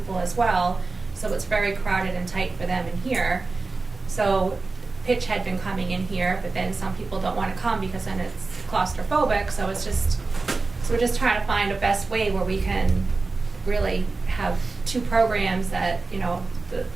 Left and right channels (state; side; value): quieter; left; 3.8 dB